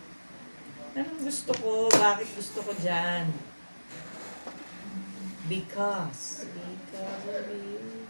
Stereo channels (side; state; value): both; inverted; correlation -1.00